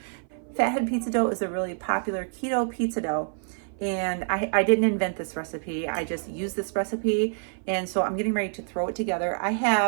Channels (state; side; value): silent; left; 55 dB below the other